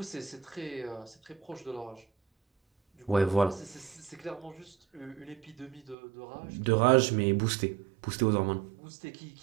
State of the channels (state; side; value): drops out; left; at 6.0 s